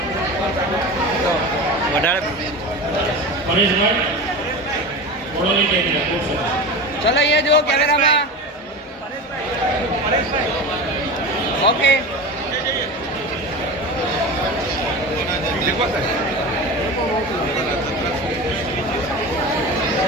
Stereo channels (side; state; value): both; normal; correlation 0.29